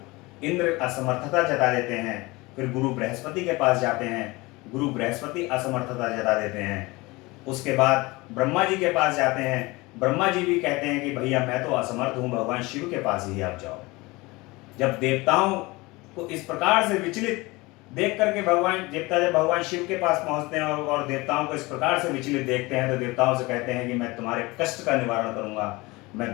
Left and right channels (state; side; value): quieter; right; 22.9 dB